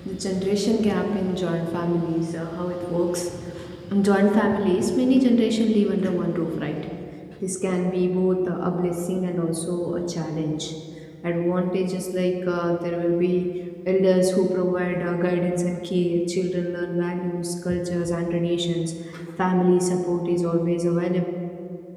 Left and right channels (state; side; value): identical; both; correlation 1.00